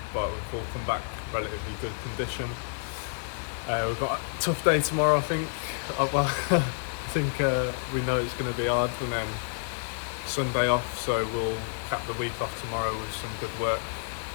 we've all come back relatively good condition. We've got a tough day tomorrow, I think. I think we know it's going to be hard, and then Sunday off, so we'll cap the week off tomorrow with some good work,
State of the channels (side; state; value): right; silent; digital silence